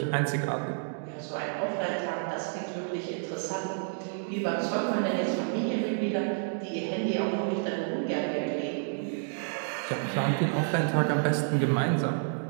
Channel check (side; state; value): left; silent; digital silence